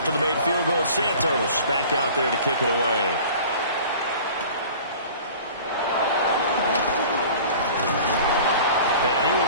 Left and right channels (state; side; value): inverted; both; correlation -0.43